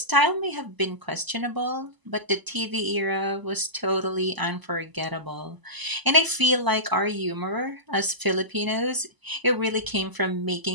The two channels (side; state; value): left; late; 1.0 ms